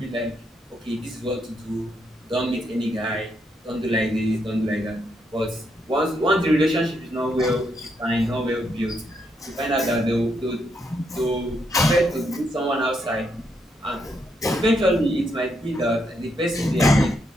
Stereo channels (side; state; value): both; normal; correlation 0.78